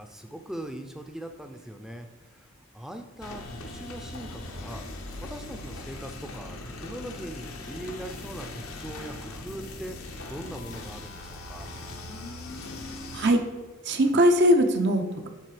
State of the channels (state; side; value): normal; both; correlation 0.46